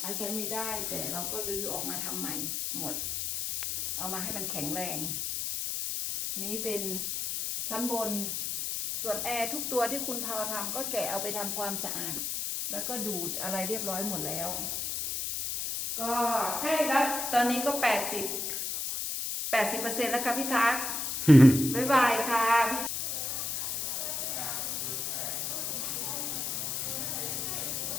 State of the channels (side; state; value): left; noise; hiss, 2 dB below the sound